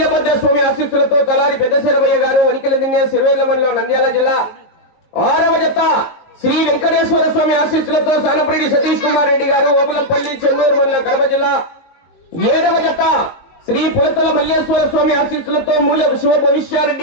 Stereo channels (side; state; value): right; late; 19 ms